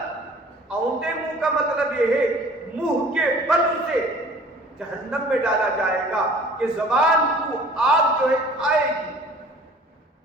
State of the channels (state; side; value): normal; both; correlation 0.49